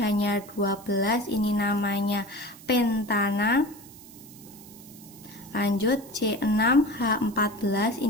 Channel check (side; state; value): right; noise; hiss, 22 dB below the sound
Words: 12, ini namanya pentana. Lanjut C6 H14,